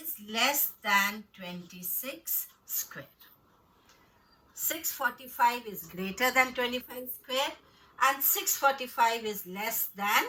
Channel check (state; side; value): identical; both; correlation 1.00